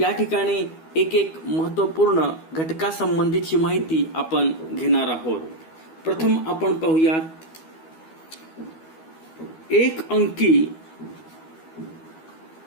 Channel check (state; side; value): late; right; 12 ms